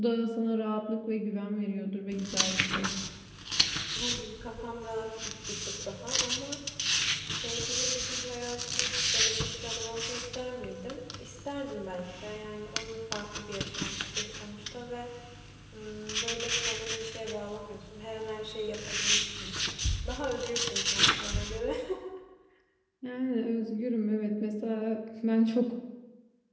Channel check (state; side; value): identical; both; correlation 1.00